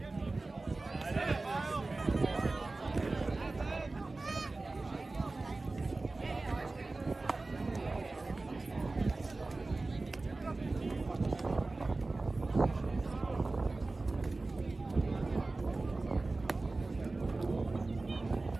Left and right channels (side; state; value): left; quieter; 3.3 dB